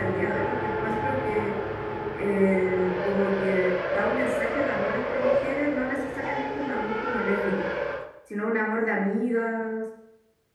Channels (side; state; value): both; identical; correlation 1.00